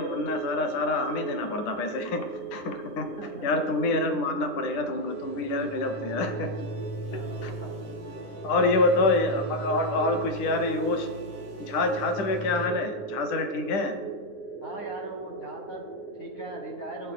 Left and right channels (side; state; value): right; late; 10 ms